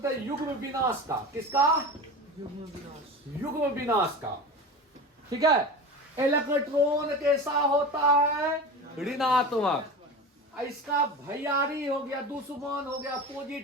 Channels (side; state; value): both; normal; correlation 0.30